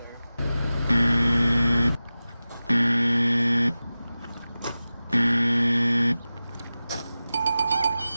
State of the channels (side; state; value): both; inverted; correlation -0.96